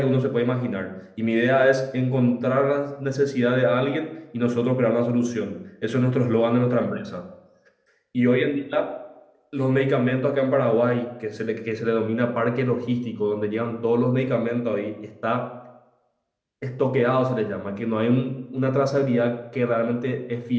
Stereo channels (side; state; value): both; identical; correlation 1.00